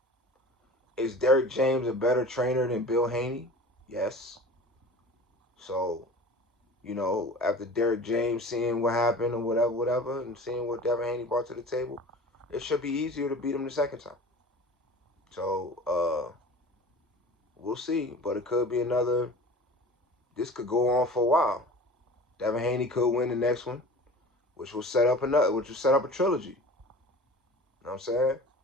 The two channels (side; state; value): both; normal; correlation 0.39